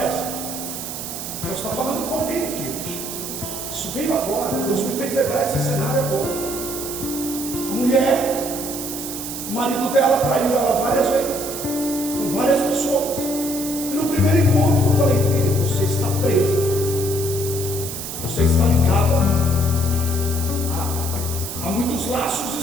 Nós estamos falando com alguém aqui hoje. Isso veio agora. Deus me fez lembrar esse cenário agora. A mulher, o marido dela traiu ela várias vezes, com várias pessoas. E no primeiro encontro eu falei: filha, você está presa. Você está ligada a muitos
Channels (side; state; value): right; noise; hiss, 7 dB below the sound